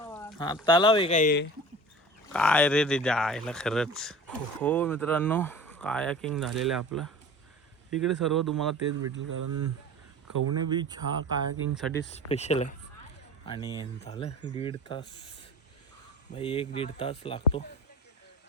हा तलाव आहे काय रे ते जायला खरंच. हो मित्रांनो कायाकिंग झालेलं आहे आपलं. इकडे सर्व तुम्हाला तेच भेटेल कारण कवणे बीच हा कायाकिंगसाठी स्पेशल आहे. आणि झालं 1.5 तास भाई, 1-1.5 तास लागतो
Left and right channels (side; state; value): both; normal; correlation 0.38